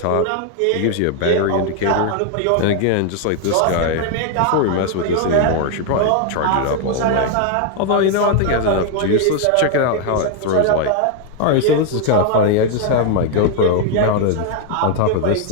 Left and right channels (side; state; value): both; different; correlation 0.01